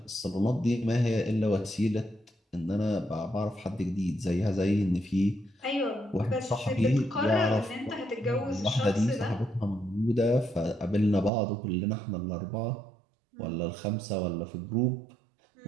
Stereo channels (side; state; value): left; drops out; at 11.3 s